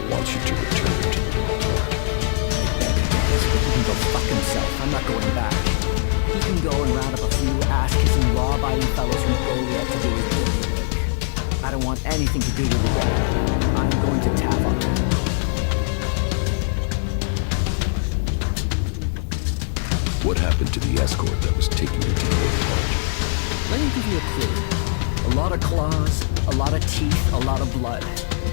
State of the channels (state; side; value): silent; right; digital silence